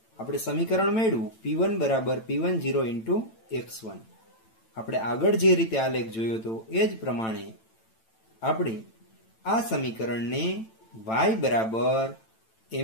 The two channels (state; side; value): late; right; 9.0 ms